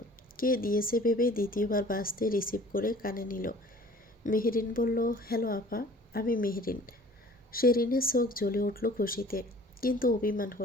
কে দিয়েছে ভেবে দ্বিতীয়বার বাজতে রিসিভ করে কানে নিল। মেহেরিন বলল, হ্যালো আপা, আমি মেহেরিন। শেরিনের চোখ জ্বলে উঠল খুশিতে, কিন্তু অভিমান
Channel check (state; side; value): normal; both; correlation 0.49